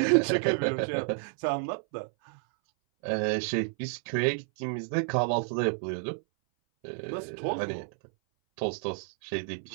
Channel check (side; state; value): left; silent; 57 dB below the other